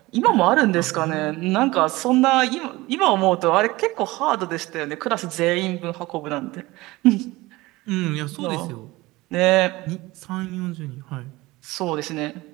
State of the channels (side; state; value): left; quieter; 20.3 dB